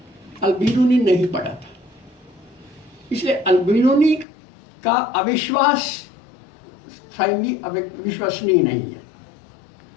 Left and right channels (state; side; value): drops out; right; at 4.2 s